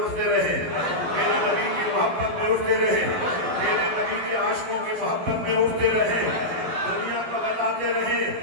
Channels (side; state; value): left; late; 12 ms